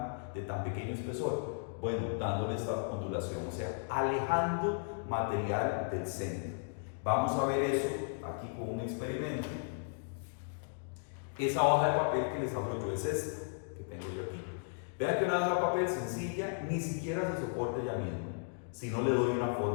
de tan pequeño espesor? Bueno, dándole esta ondulación, o sea, alejando material del centro. Vamos a ver eso aquí con un experimento. Esa hoja de papel que les hablo yo es esta, que tengo yo aquí. Vean que una hoja de papel sencilla ni siquiera se soporta ella misma, si no le doy una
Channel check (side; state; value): right; silent; digital silence